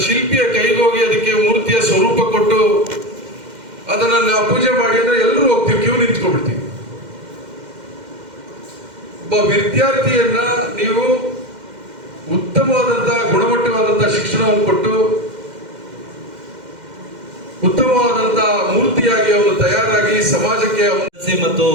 ಶಿಲ್ಪಿಯ ಕೈಗೆ ಹೋಗಿ ಅದಕ್ಕೆ ಮೂರ್ತಿಯ ಸ್ವರೂಪ ಕೊಟ್ಟು ಅದನ್ನ ನಾವು ಪೂಜೆ ಮಾಡಿ ಅಂದ್ರೆ ಎಲ್ಲರೂ ಹೋಗ್ತೀವಿ, ಕ್ಯೂ ನಿಂತ್ಕೊಂಡ್ಬಿಡ್ತೀವಿ. ಒಬ್ಬ ವಿದ್ಯಾರ್ಥಿಯನ್ನ ನೀವು ಉತ್ತಮವಾದಂತಹ ಗುಣಮಟ್ಟವಾದಂತಹ ಶಿಕ್ಷಣವನ್ನು ಕೊಟ್ಟು ಉತ್ತಮವಾದಂತಹ ಮೂರ್ತಿಯಾಗಿ ಅವನು ತಯಾರಾಗಿ ಸಮಾಜಕ್ಕೆ ಮತ್ತು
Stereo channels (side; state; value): left; late; 2.1 ms